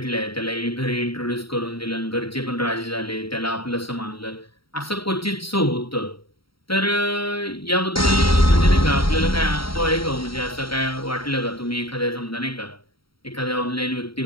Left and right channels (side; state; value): right; late; 0.75 ms